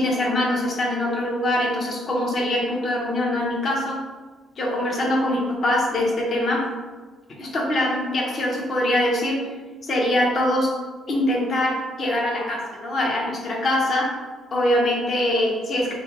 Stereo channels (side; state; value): both; normal; correlation 0.71